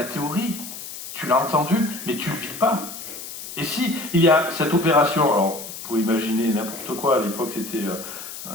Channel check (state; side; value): noise; left; hiss, 10 dB below the sound